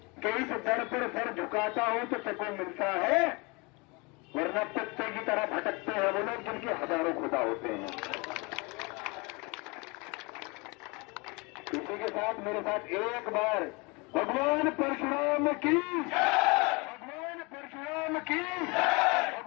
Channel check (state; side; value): quieter; right; 28.2 dB